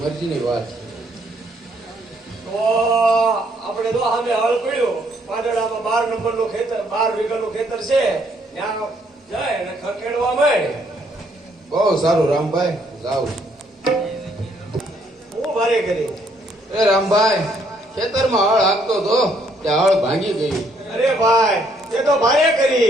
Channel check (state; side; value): normal; both; correlation 0.69